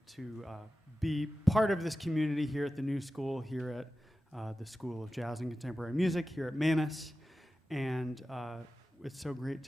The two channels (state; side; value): normal; both; correlation 0.94